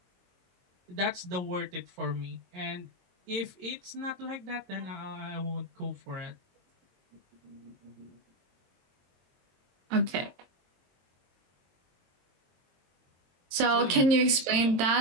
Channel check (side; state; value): left; late; 22 ms